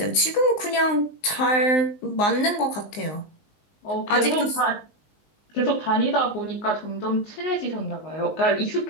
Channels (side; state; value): right; late; 19 ms